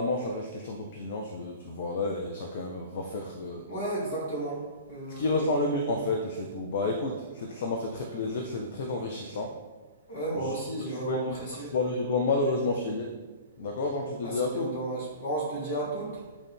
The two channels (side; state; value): both; inverted; correlation -0.37